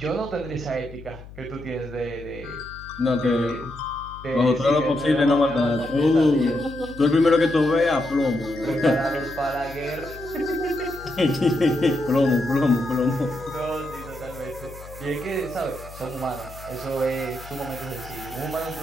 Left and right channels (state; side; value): noise; left; hum, 16 dB below the sound